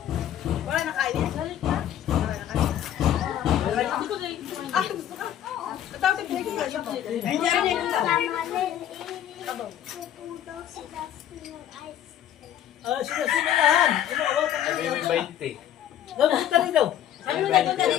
Wala nakain yan. Hindi ko din. Ah, gusto ka? Katawag yung pinigil ka siya. Hindi rin yung Ah, sinasimulahan. Ano, awat ang Sabi ano. may 20. Napunta rin daw. Sabi mo nagpunta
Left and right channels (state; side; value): quieter; right; 11.0 dB